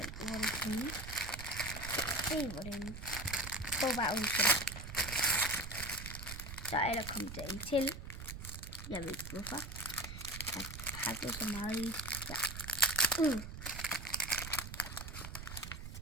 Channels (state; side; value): noise; right; rumble, 9 dB below the sound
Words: hvor det kan. Se hvor den får bare udsendt. Så er der kommet der en til. Jeg ved ikke hvorfor. Jeg har pakket så meget i. Ja.